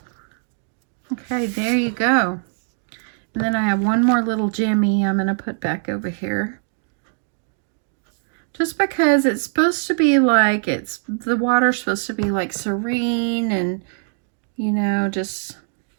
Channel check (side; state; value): left; silent; 59 dB below the other